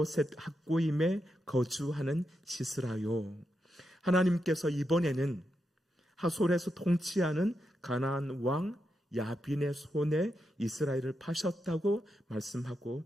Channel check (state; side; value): normal; both; correlation 0.85